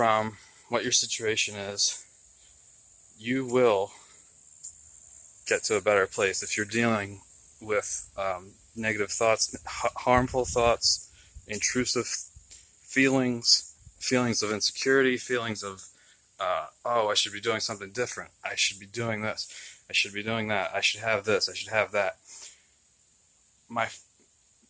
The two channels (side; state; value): both; identical; correlation 1.00